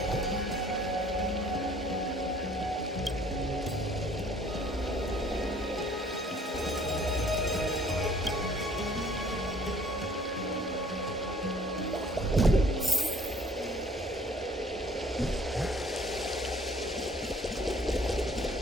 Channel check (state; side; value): normal; both; correlation 0.56